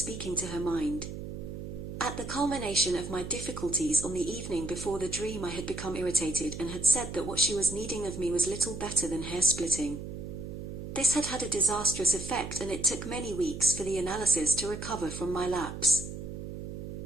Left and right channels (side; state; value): right; noise; hum, 8 dB below the sound